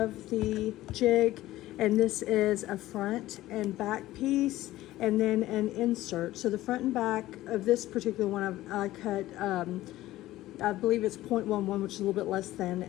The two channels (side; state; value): right; quieter; 15.9 dB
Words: the jig, and this is a front and back piece and then an insert. So the front and back of this particular one I cut I believe it's 0.11, which is a little bit less than